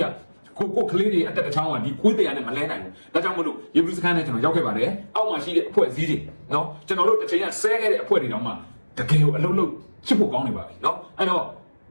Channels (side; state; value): both; inverted; correlation -1.00